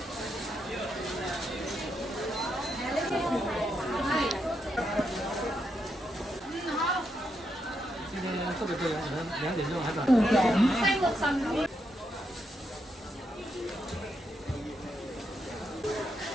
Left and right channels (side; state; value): both; normal; correlation 0.81